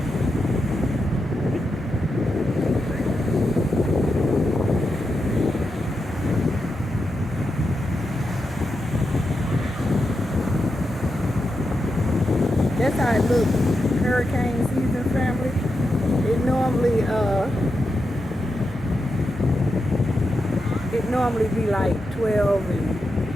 That's how it looks. Hurricane season, family. It normally be like 12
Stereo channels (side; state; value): both; normal; correlation 0.87